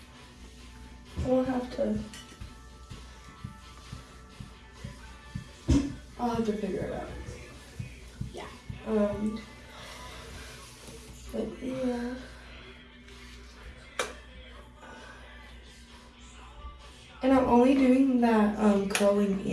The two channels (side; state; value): both; identical; correlation 1.00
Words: I'll have to figure it out. Yeah. But yeah. And I'm only doing that curling